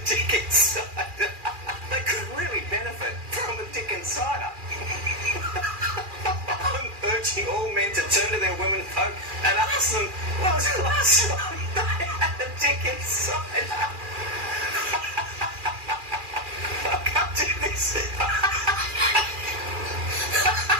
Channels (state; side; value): late; left; 2.4 ms